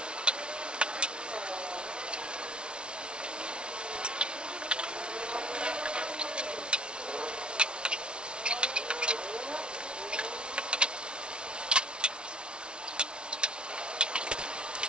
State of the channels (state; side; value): late; left; 0.057 ms